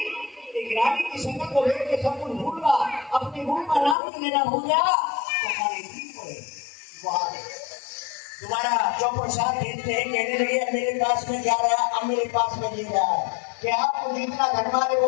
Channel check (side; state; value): right; drops out; at 4.0 s